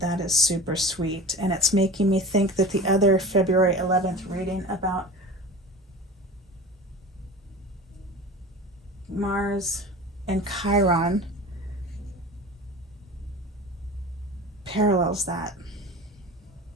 is super sweet. And it's making me think that the other February 11th reading about Mars and Chiron parallels that.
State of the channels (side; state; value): both; normal; correlation 0.34